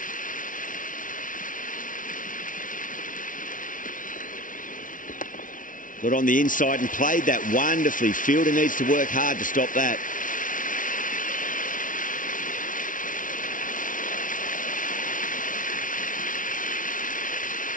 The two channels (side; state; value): right; late; 0.38 ms